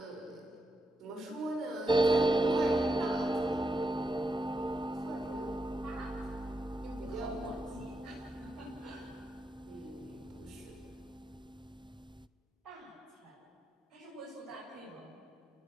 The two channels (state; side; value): normal; both; correlation 0.84